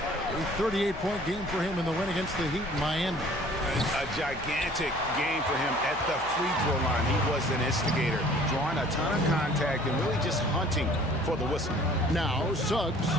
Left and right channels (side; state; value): left; noise; hum, 18 dB below the sound